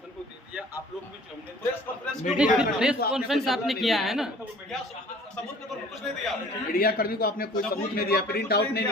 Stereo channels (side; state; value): both; normal; correlation 0.50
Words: को दे दिया, आप लोग भी जो हमने प्रेस कॉन्फ्रेंस प्रेस कॉन्फ्रेंस आपने किया है ना। क्या सबूत के तौर पर कुछ नहीं दिया। मीडिया कर्मी को आपने कोई सबूत नहीं दिया, प्रिंट आउट नहीं